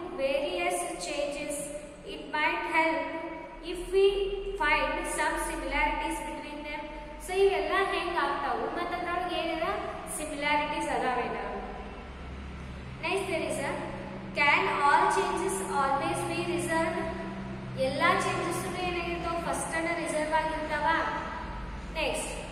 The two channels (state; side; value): identical; both; correlation 1.00